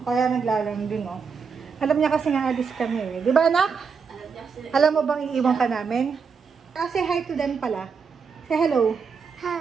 Kaya naglalang din, oh. Alam niya kasi nga alis kami, eh. Di ba, anak? Alam mo bang iiwan ka namin? Say hi to them pala. Say hello.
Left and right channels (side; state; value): left; quieter; 5.7 dB